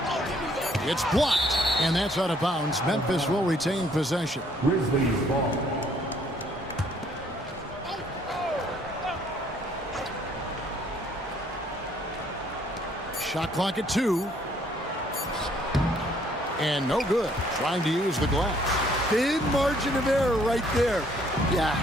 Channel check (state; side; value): normal; both; correlation 0.64